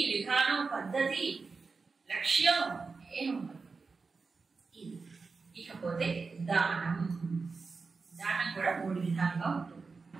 విధానం, పద్ధతి, లక్ష్యం ఏముండదు. ఇది ఇకపోతే దానం. దానం కూడా 3 విధాలుగా ఉంటుంది.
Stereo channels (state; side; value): quieter; left; 4.5 dB